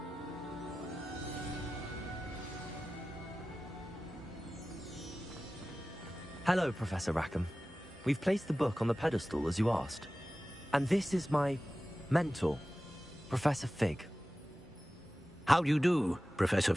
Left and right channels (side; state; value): both; normal; correlation 0.95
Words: Hello, Professor Rackham. We've placed the book on the pedestal as you asked. And this is my mentor, Professor Fig. How do you do, Professor